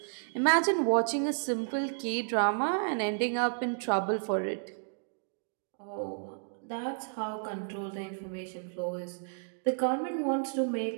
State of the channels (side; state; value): left; silent; digital silence